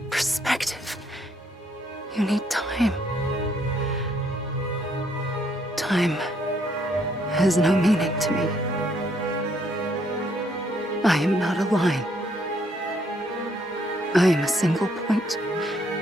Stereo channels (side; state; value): both; normal; correlation 0.70